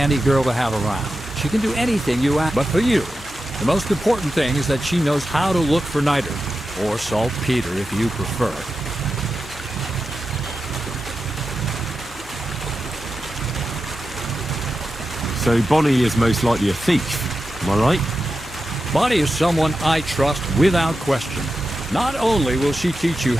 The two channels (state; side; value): normal; both; correlation 0.91